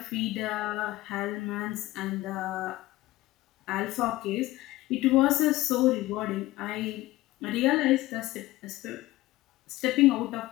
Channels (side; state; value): right; quieter; 17.8 dB